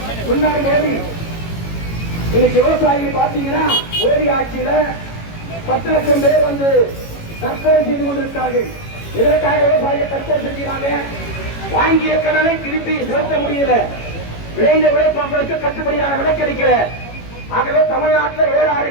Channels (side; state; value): right; late; 18 ms